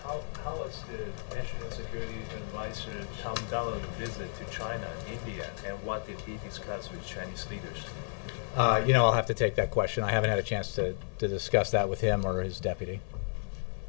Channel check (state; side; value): silent; right; 56 dB below the other